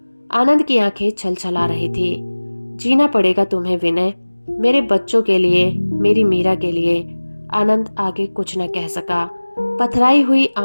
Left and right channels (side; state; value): both; inverted; correlation -1.00